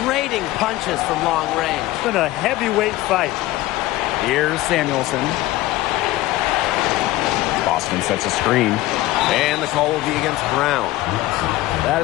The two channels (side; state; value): right; quieter; 17.0 dB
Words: trading punches from long range. It's been a heavyweight fight. Here's Samuelson. Boston sets a screen. And the call will be against Brown. That